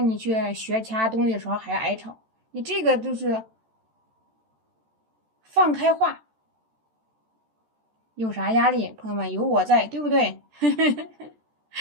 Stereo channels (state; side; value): late; left; 14 ms